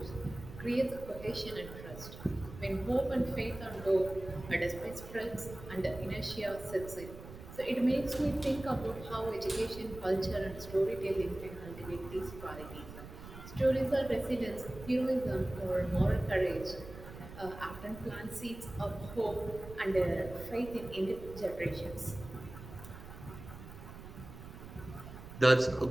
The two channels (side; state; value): right; noise; rumble, 14 dB below the sound